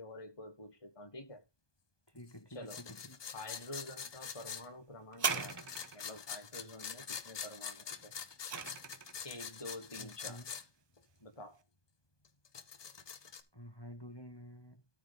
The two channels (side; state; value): right; late; 1.2 ms